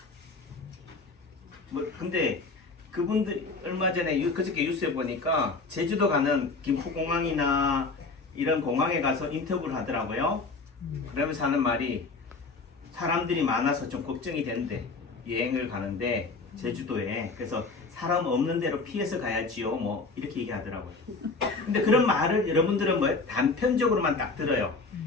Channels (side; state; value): right; quieter; 3.9 dB